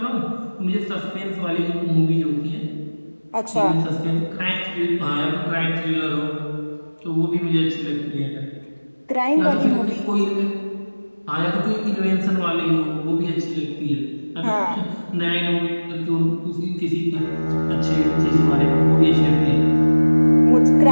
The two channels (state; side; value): inverted; both; correlation -1.00